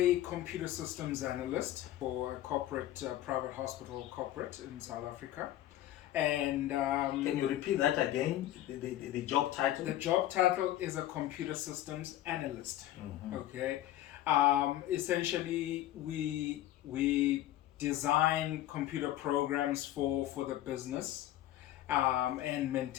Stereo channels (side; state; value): right; quieter; 13.8 dB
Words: computer systems analyst for a corporate, private hospital corporate in South Africa. And can you repeat that again? The job title? The job title is a computer systems analyst. Okay, essentially we design computer programs for the business and